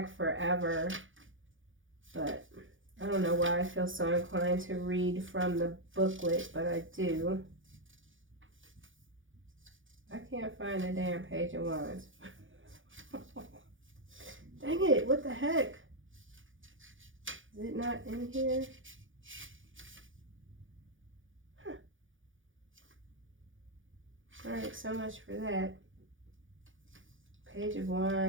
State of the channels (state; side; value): late; left; 0.57 ms